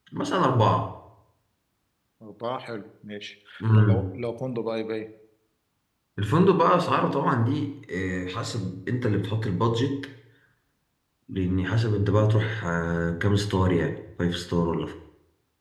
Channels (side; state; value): both; identical; correlation 1.00